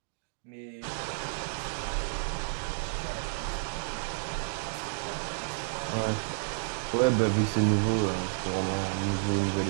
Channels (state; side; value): silent; left; digital silence